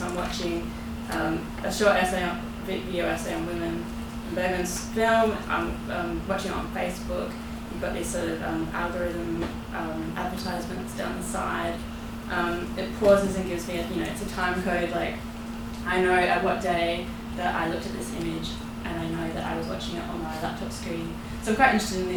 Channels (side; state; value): both; identical; correlation 1.00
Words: I'm watching a short video essay on women in Bergman's film. I'm watching it on Facebook. You've got these sort of algorithm advertisements down the side. It pauses and gives me it's a time code. Like I know at what day that I looked at this image, and I know that I was watching it on my laptop screen. So I'm quite interested in